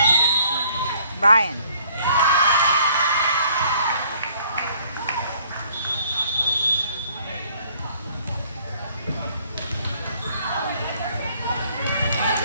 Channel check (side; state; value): both; inverted; correlation -0.60